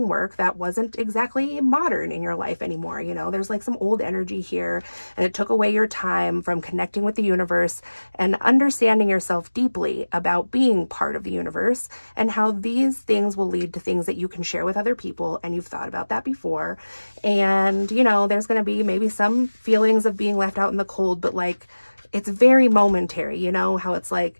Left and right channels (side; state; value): both; inverted; correlation -1.00